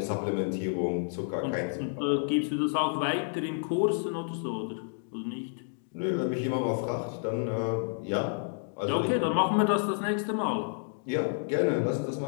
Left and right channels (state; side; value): silent; right; digital silence